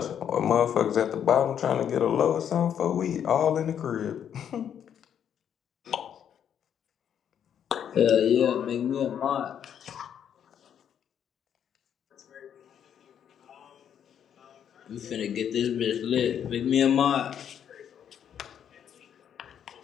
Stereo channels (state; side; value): quieter; right; 8.9 dB